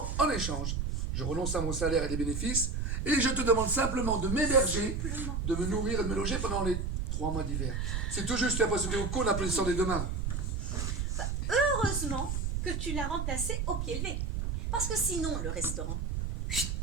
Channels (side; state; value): right; noise; rumble, 1 dB below the sound